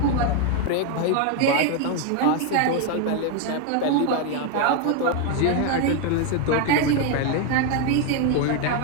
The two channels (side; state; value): both; different; correlation 0.01